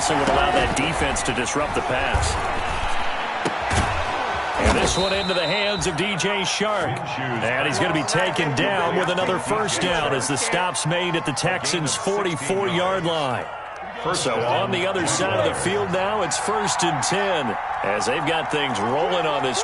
what allowed that defense to disrupt the pass. And this one into the hands of DJ Shark. And he's going to be taken down with another first down as the stop's made at the Texans' 44-yard line. So on the other side of the field now, it's 1st and 10 as they've got things rolling on this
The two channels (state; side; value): identical; both; correlation 1.00